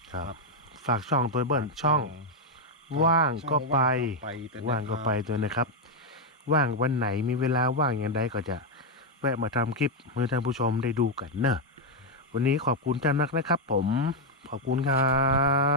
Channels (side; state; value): both; normal; correlation 0.02